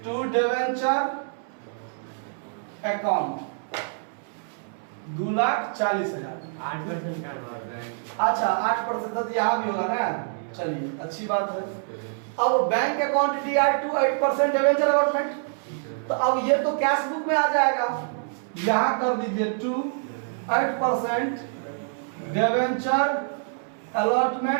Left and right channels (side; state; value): left; silent; 61 dB below the other